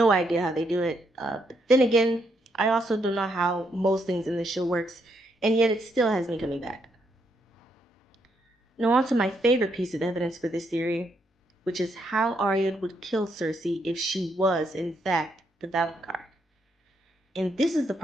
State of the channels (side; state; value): both; normal; correlation 0.76